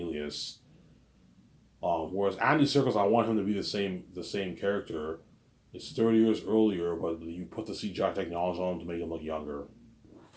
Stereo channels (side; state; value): both; identical; correlation 1.00